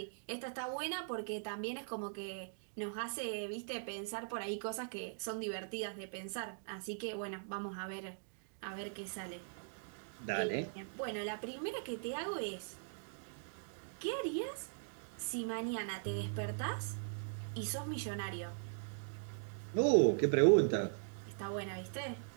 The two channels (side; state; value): left; silent; digital silence